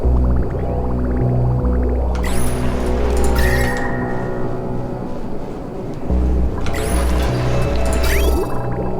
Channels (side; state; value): both; identical; correlation 1.00